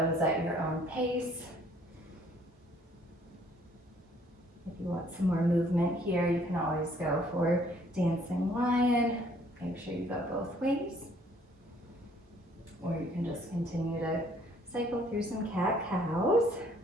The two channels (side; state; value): both; normal; correlation 0.61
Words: at your own pace. If you want some more movement here, you can always go for dancing lion. Make sure you go both ways. Or you can just continue to cycle through some cat cows.